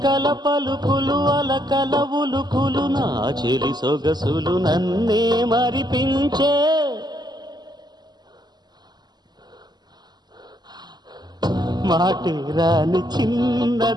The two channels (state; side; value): late; left; 0.20 ms